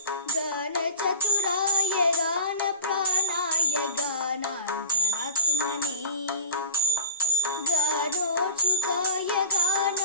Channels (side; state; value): both; inverted; correlation -0.33